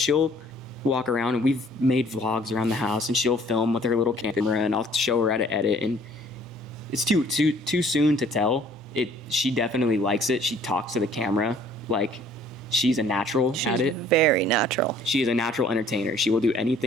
walk around, and we've made vlogs around the house, and she'll film with her little camera, and I'll show her how to edit, and it's too soon to tell. She definitely likes it. She talks to the camera like she's a natural at it. She's very natural. She is a natural entertainer. She will do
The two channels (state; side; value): normal; both; correlation 0.56